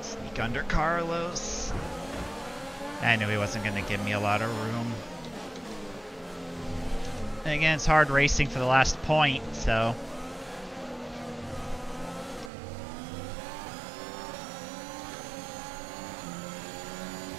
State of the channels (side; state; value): left; drops out; at 12.5 s